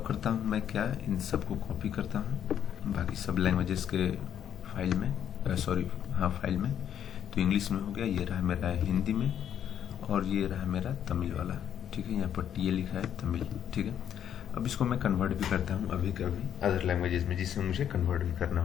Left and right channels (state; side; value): quieter; right; 9.5 dB